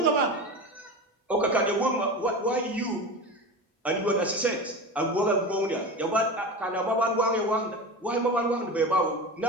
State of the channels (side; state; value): both; normal; correlation 0.28